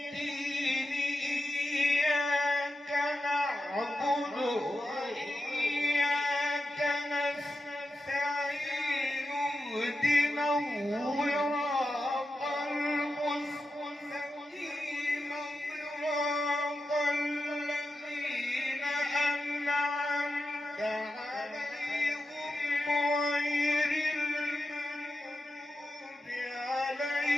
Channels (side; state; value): both; normal; correlation 0.90